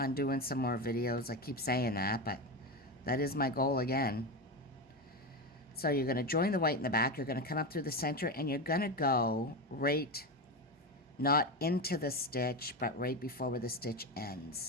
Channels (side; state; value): both; normal; correlation 0.16